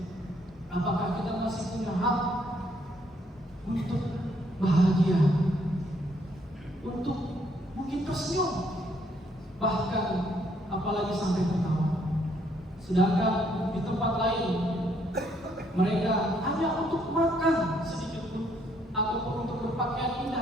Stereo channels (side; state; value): both; normal; correlation 0.69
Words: apakah kita masih punya hak untuk bahagia, untuk mungkin tersenyum, bahkan apalagi sampai tertawa? Sedangkan di tempat lain mereka hanya untuk makan sedikit pun ataupun untuk berpakaian